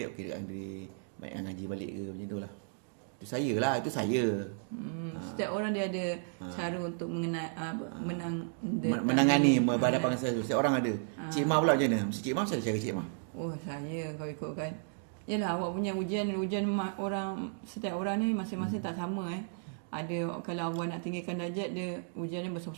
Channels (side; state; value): left; silent; digital silence